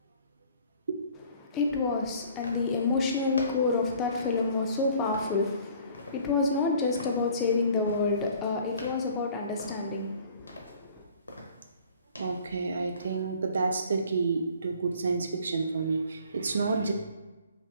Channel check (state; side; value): inverted; both; correlation -0.52